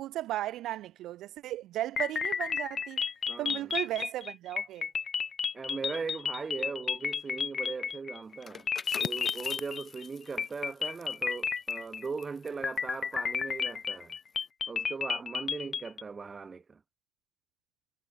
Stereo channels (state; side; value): normal; both; correlation 0.75